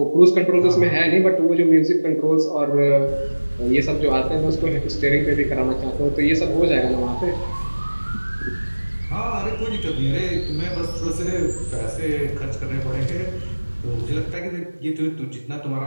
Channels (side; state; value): both; inverted; correlation -1.00